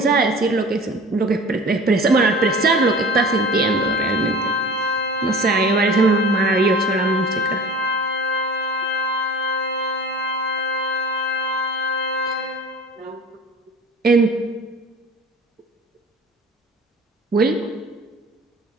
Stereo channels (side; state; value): both; normal; correlation 0.42